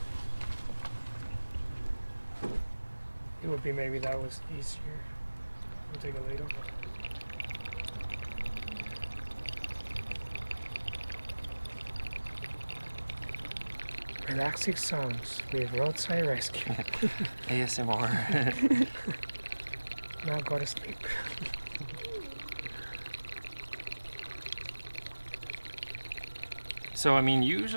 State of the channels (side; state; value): both; inverted; correlation -1.00